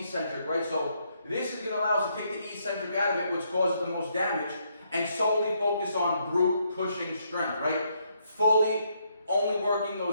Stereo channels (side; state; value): both; inverted; correlation -0.74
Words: right? So this is going to allow us to take the eccentric out of it, which causes the most damage, and solely focus on brute pushing strength, right? Fully only working